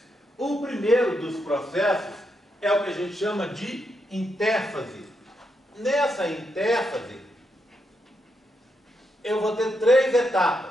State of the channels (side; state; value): both; normal; correlation 0.82